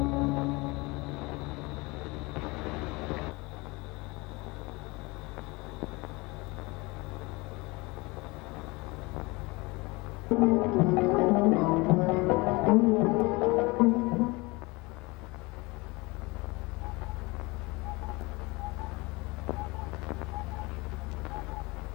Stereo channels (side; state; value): right; quieter; 24.6 dB